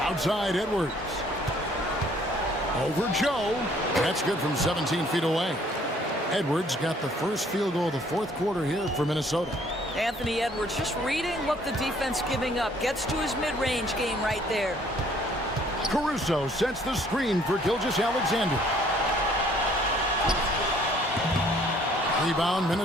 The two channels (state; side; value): normal; both; correlation 0.60